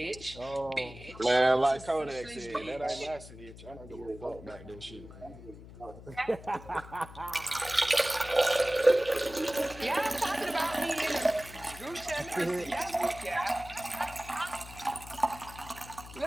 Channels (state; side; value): noise; left; hum, 16 dB below the sound